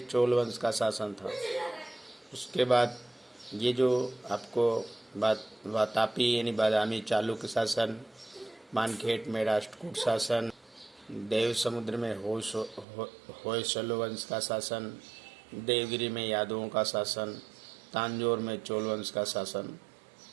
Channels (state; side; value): drops out; left; at 12.9 s